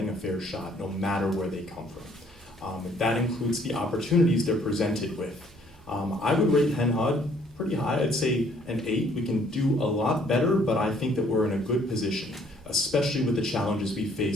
a fair shot no matter where they come from. That includes the opportunities they're presented with. I would rate HenHUD pretty high. I'd say an 8. We can do a lot better, but I think that we're in a good position, especially with the challenges we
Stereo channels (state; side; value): normal; both; correlation 0.61